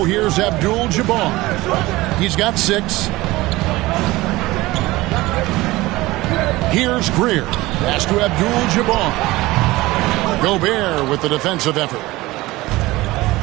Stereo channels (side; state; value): left; quieter; 19.4 dB